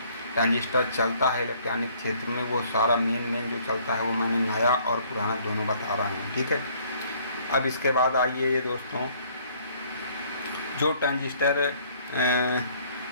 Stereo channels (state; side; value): inverted; both; correlation -0.60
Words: ट्रांजिस्टर चलता है इलेक्ट्रॉनिक क्षेत्र में, वो सारा मेन जो चलता है वो मैंने नया और पुराना दोनों बता रहा हूँ, ठीक है। अब इसके बाद आइए ये दोस्तों, जो ट्रांजिस्टर